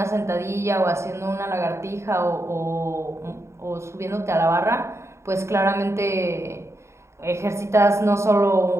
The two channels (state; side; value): late; left; 0.13 ms